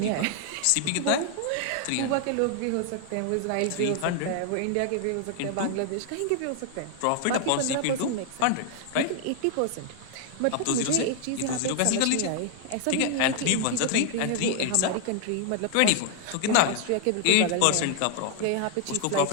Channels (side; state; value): both; different; correlation 0.00